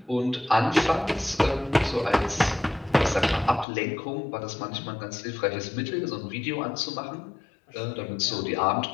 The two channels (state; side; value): drops out; right; at 3.7 s